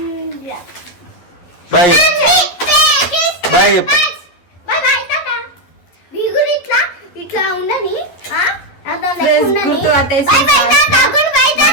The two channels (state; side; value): late; right; 11 ms